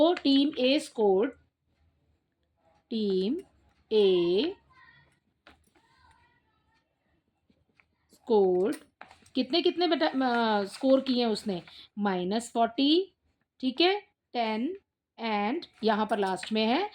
टीम ए स्कोर्ड कितने कितने बेटा स्कोर किए हैं उसने, -40। ठीक है, 10 एंड यहाँ पर लास्ट में है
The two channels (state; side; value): identical; both; correlation 1.00